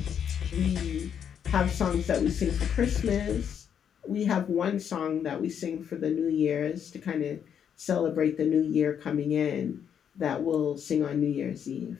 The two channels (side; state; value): right; quieter; 8.3 dB